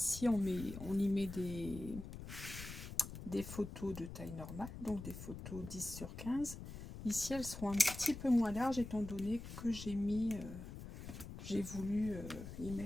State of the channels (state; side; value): noise; left; rumble, 10 dB below the sound